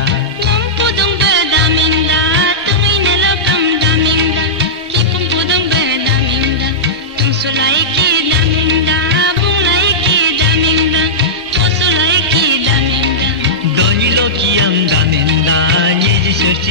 nam podong be damenda tumi nelokam damenda kipum podong be damenda tum sulai ki damenda bunglai ki damenda posulai ki damenda doni lokiyam damenda nyeji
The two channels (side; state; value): both; normal; correlation -0.14